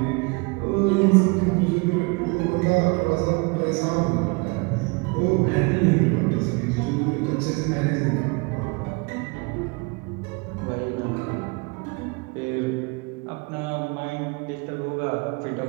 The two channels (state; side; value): quieter; left; 28.9 dB